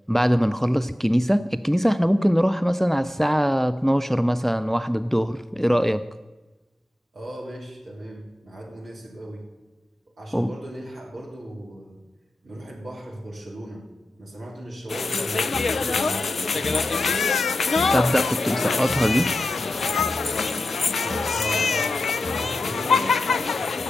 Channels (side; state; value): both; normal; correlation 0.93